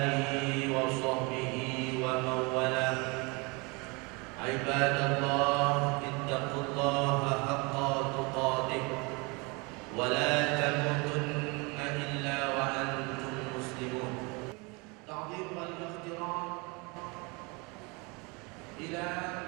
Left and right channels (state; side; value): quieter; left; 28.7 dB